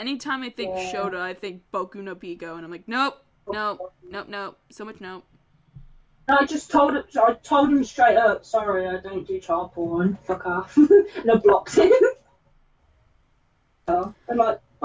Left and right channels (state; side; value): identical; both; correlation 1.00